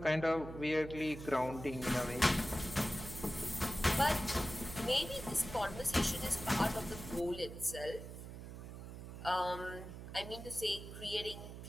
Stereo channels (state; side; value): noise; right; hum, 11 dB below the sound